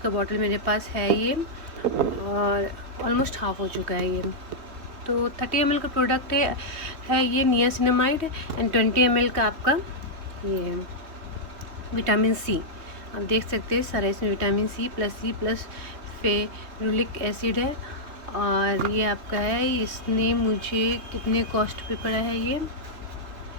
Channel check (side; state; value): left; late; 3.1 ms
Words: बॉटल मेरे पास है ये, और ऑलमोस्ट हाफ़ हो चुका है ये। तो 30 ml का प्रोडक्ट है ये नियासिनामाइड एंड 20 ml का आपका ये विटामिन सी। आप देख सकते हैं सारा इसमें vitamin C plus ferulic acid है। और ये आपका है, इसने मुझे कितने कॉस्ट पे पड़ा है